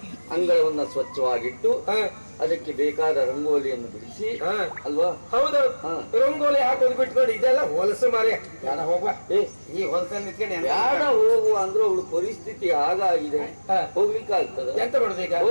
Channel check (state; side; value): inverted; both; correlation -1.00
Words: ಅಂಗಳವನ್ನ ಸ್ವಚ್ಛವಾಗಿಟ್ಟು ಅದಕ್ಕೆ ಬೇಕಾದ ರಂಗೋಲಿಯನ್ನು ಬಿಡಿಸಿ ಅಲ್ವಾ? ಹೌದೌದು, ರಂಗೋಲಿ ಹಾಕೋದು ಬಿಟ್ಕೊಂಡು ಇದೆಲ್ಲ ಹೊಲಸು ಮಾರಿ ಬೇಡ ಹೋಗುವ. ಈ ಹೊಲಸಲ್ಲಿ ನಿಂತ್ಕೊಂಡು ಬೇಡ ಹೋಗುವ ಅಂದ್ರೆ ಅವಳು ಪರಿಸ್ಥಿತಿ ಹಾಗಾಗಿದೆ, ಹೋಗ್ಲಿಕ್ಕೆ ಆಗ್ತದೆ. ಎಂತ ಮಾಡುದು ಈಗ?